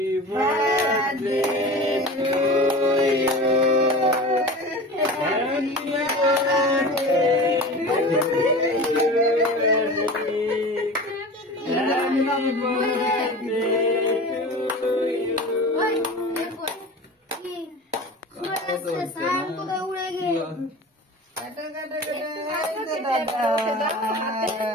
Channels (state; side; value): normal; both; correlation 0.34